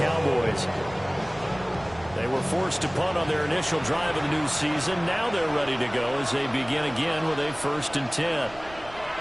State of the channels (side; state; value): right; noise; rumble, 20 dB below the sound